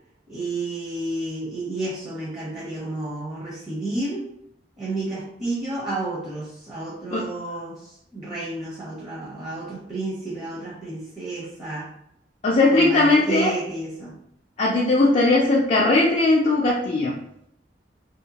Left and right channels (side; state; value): both; normal; correlation 0.50